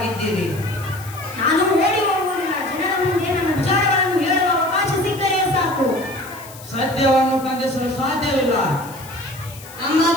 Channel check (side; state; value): left; noise; hiss, 18 dB below the sound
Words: ನಾನು ಓಡಿ ಹೋಗುವುದಿಲ್ಲ. ಜನರ ಮುಂದೆ ನನ್ನ ವಿಚಾರಗಳನ್ನು ಹೇಳುವ ಅವಕಾಶ ಸಿಕ್ಕರೆ ಸಾಕು. ಸತ್ಯವನ್ನು ಬಂಧಿಸಲು ಸಾಧ್ಯವಿಲ್ಲ. ನಮ್ಮ